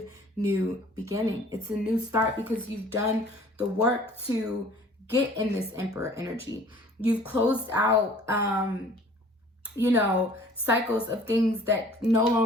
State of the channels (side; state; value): both; normal; correlation 0.51